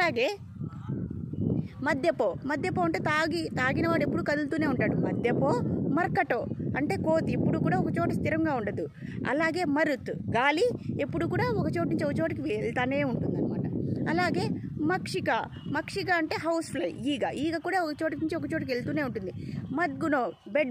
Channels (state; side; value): identical; both; correlation 1.00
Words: మద్యపో అంటే తాగినవాడు ఎప్పుడు కదులుతూనే ఉంటాడు. మద్యపో. మర్కటో అంటే కోతి, ఎప్పుడు కూడా ఒక చోట స్థిరంగా ఉండదు. అలాగే మరుత్, గాలి ఎప్పుడు కూడా ఒక చోటు నుంచి ఒక చోటుకి వెళ్తానే ఉంటుంది అనమాట. అలాగే మక్షిక అంటే హౌస్ ఫ్లై, ఈగ కూడా ఒక చోటు నుంచి ఒక చోటుకి వెళ్తూనే ఉంటుంది. మద్గునో,